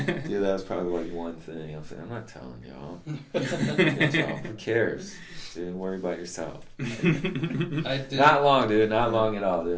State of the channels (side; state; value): both; identical; correlation 1.00